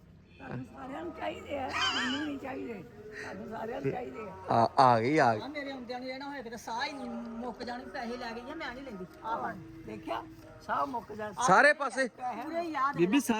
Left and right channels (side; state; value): both; identical; correlation 1.00